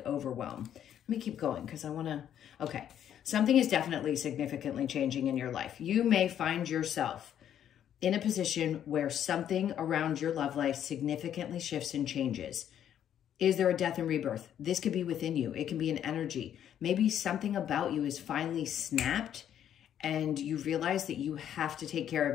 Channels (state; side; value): quieter; right; 10.0 dB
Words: overwhelm. Let me keep going because I want to, okay. Something is definitely significantly changing in your life. You may find yourself in a position where something around your love life significantly shifts and changes. Is there a death and rebirth? This could be within you. It can be an energy. Maybe something about you is finally snapped and you realize that you have to take care